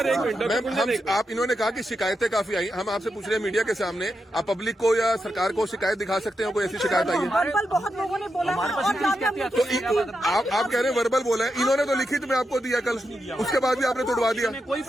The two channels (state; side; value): normal; both; correlation 0.86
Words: एक मिनट, मैम आप इन्होंने कहा कि शिकायतें काफी आई, हम आपसे पूछ रहे हैं मीडिया के सामने, आप पब्लिक को या सरकार को शिकायत दिखा सकते हैं? कोई ऐसी शिकायत आई है? बहुत लोगों ने बोला तो आप कह रहे हैं वर्बल बोला है, इन्होंने तो लिखित में आपको दिया कल, उसके बाद भी आपने तोड़वा दिया। कोई